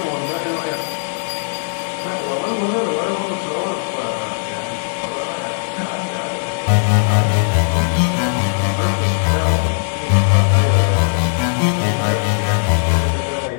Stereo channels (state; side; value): silent; right; 65 dB below the other